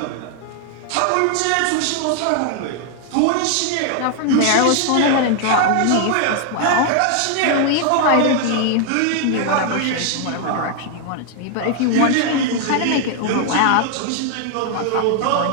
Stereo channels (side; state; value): both; different; correlation 0.00